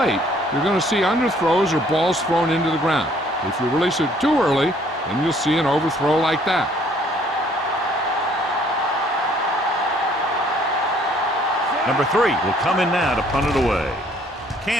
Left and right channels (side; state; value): both; normal; correlation 0.61